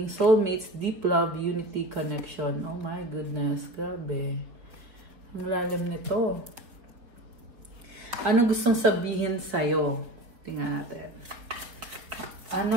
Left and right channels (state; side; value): late; left; 4.4 ms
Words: soulmates, deep love, unity, connection. Oh my goodness, grabe. Ang lalim nito. Ano gustong sabihin sa'yo? Tingnan natin.